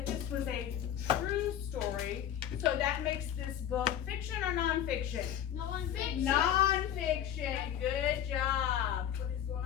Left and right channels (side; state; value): right; quieter; 10.3 dB